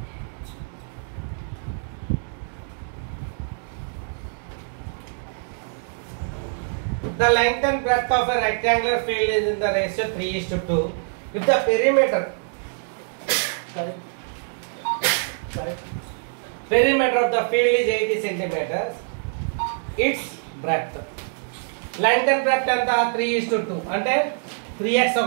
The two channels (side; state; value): left; silent; digital silence